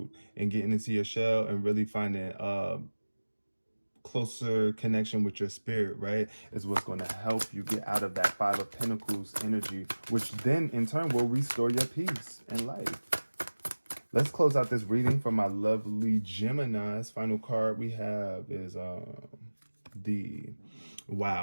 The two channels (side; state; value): both; inverted; correlation -1.00